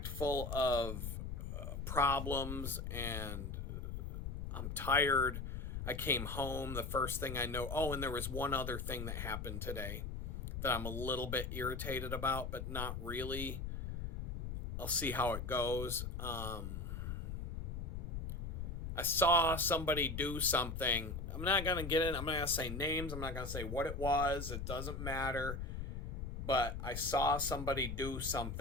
full of problems, and I'm tired. I came home. The first thing I know, and there was one other thing that happened today that I'm a little bit irritated about, but not really. I'll see how it goes. I saw somebody do something. I'm not going to get in. I'm not going to say names. I'm not going to say what it was. It doesn't matter. But I saw somebody do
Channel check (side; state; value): left; noise; rumble, 5 dB below the sound